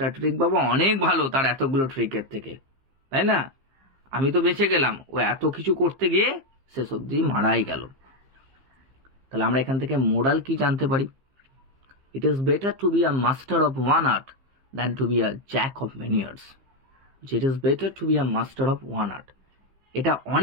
ট্রিক বাবা অনেক ভালো তার এতগুলো ট্রিকের থেকে, তাই না? আমি তো বেঁচে গেলাম, ও এত কিছু করতে গিয়ে শেষ অবধি মারাই গেল। তাহলে আমরা এখান থেকে মোরাল কি জানতে পারি? It is better to be a master of one art than to be a jack of many arts. It is better to be a master of one art, এটা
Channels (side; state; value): left; late; 15 ms